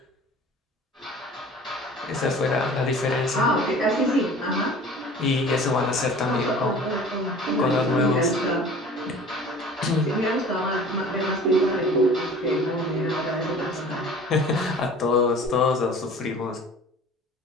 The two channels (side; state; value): both; normal; correlation 0.44